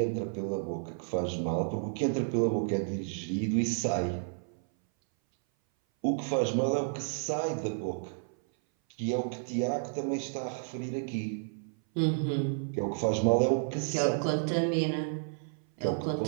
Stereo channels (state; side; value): silent; left; 57 dB below the other